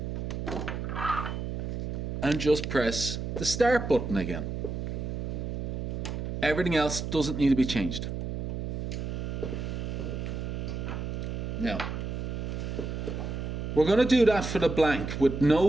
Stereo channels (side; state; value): right; noise; hum, 4 dB below the sound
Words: and just press the start button again. Everything else doesn't need to be changed. Now, we're going to do that for the blank with